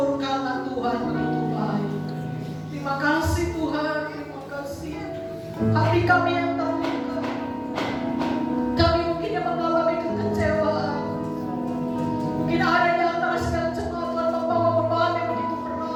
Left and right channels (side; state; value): both; identical; correlation 1.00